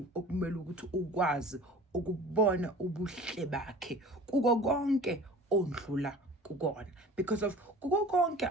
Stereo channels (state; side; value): normal; both; correlation 0.42